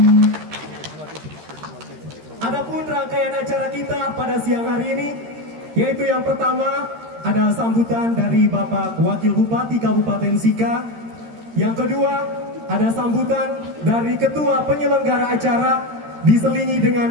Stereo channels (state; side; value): late; left; 13 ms